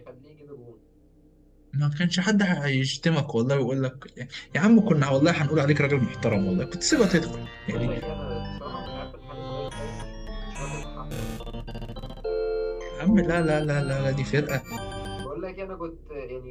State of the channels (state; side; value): identical; both; correlation 1.00